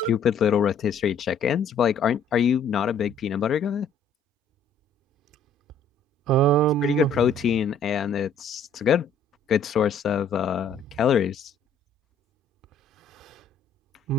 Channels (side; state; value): right; quieter; 3.6 dB